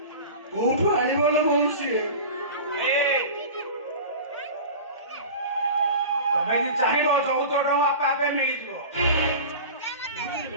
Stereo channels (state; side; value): inverted; both; correlation -0.34